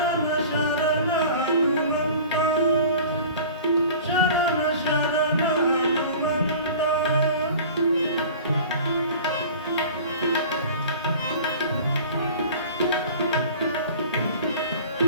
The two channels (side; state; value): both; inverted; correlation -0.42